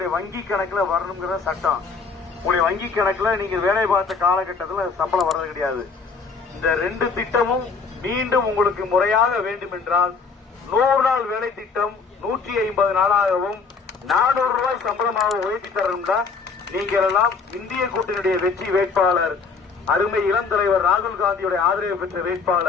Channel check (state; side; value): quieter; right; 4.9 dB